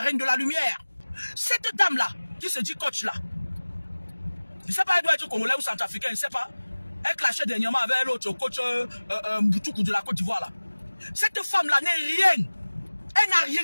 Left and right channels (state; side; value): inverted; both; correlation -1.00